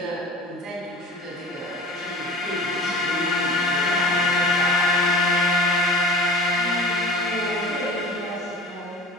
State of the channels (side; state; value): both; normal; correlation 0.38